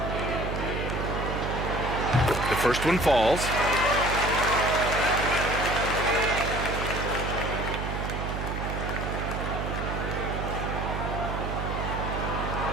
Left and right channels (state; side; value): noise; right; hum, 3 dB below the sound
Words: The first one falls.